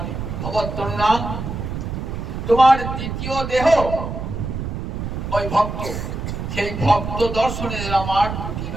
ভগবৎ, তোমার দ্বিতীয় দেহ ওই ভক্ত, সেই ভক্ত দর্শনে আমার দুটি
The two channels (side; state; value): right; noise; rumble, 5 dB below the sound